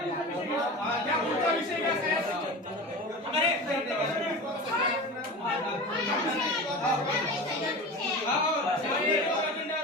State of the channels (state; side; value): normal; both; correlation 0.31